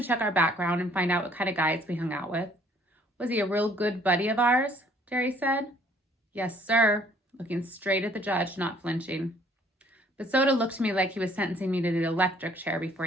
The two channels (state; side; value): normal; both; correlation 0.60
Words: check our background and find out what kind of guys we hung out with. Was he a real good buddy of ours? Derry said. Yes, sir, looking straight at the judge, not flinching. But Soda looked to me like he was sentencing me to the electric chair before